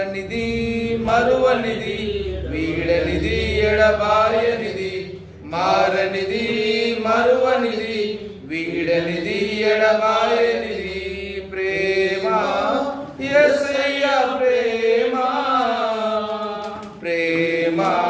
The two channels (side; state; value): both; identical; correlation 1.00